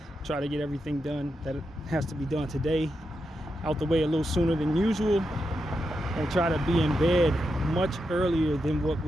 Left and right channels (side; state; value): both; normal; correlation 0.86